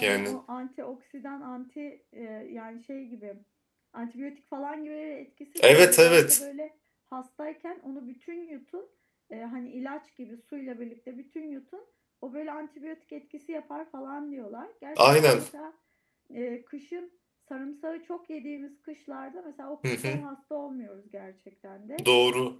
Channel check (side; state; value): both; identical; correlation 1.00